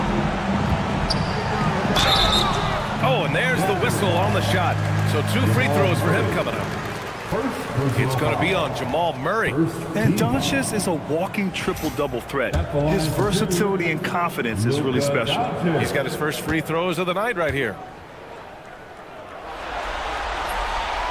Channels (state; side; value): identical; both; correlation 1.00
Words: Oh, and there's the whistle on the shot. So 2 free throws for him coming up. It's going to be on Jamal Murray. And Doncic is a walking triple-double threat. His versatility and confidence is really special. He's got his first free throws of the night right here.